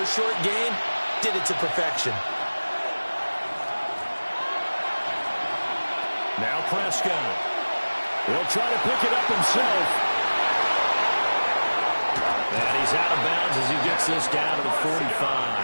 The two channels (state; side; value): inverted; both; correlation -1.00